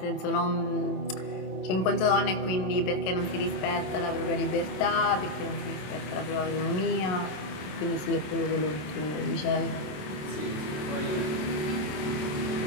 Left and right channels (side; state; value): right; late; 27 ms